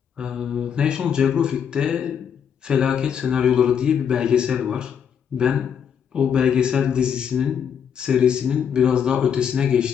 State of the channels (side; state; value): right; quieter; 7.8 dB